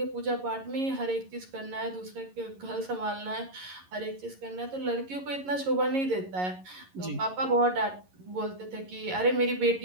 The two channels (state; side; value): late; left; 11 ms